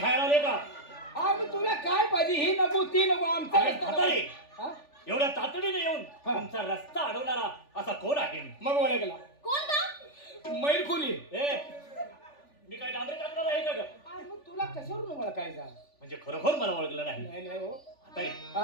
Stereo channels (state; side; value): late; right; 3.4 ms